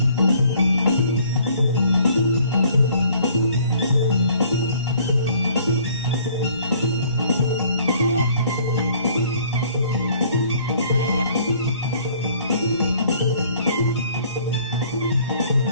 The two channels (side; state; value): both; inverted; correlation -0.57